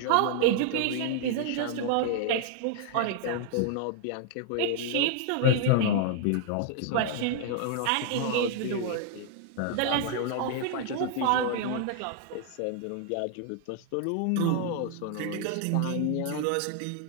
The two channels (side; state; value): both; different; correlation 0.00